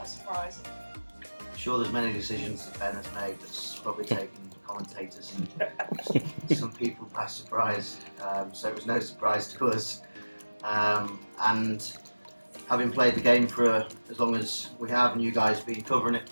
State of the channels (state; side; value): inverted; both; correlation -1.00